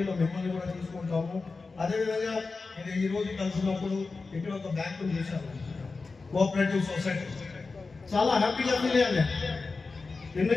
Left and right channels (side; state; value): right; quieter; 4.1 dB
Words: మిమ్మల్ని కూడా తీసుకుంటాము. అదేవిధంగా ఇది ఈరోజు కలిసినప్పుడు ఇక్కడ ఒక బ్యాంకును చూశాను, కోఆపరేటివ్ సొసైటీ. చాలా హ్యాపీగా ఫీల్ అయ్యాను.